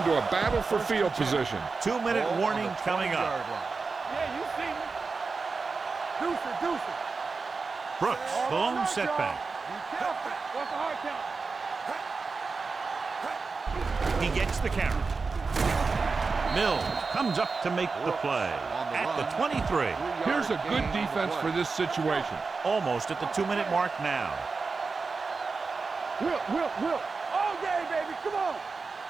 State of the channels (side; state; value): left; quieter; 4.4 dB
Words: a battle for field position. 2-minute warning coming up. Yeah, you see me. Deuce it. Brooks, the lone setback. Be careful. What's the hard count? He gets the carry. Mills comes up to make the play at the 23. Here's a good defense for this situation. Almost at the 2-minute mark now. Will. All day, baby. Come on.